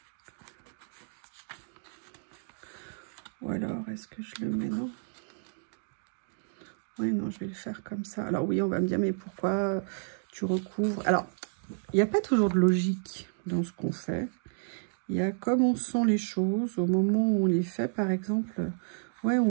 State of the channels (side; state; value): left; silent; digital silence